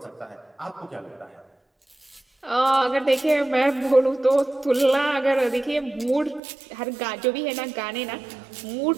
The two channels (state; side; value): drops out; left; at 6.4 s